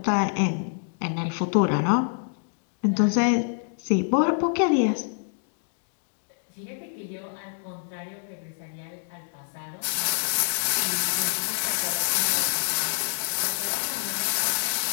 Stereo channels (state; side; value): silent; right; digital silence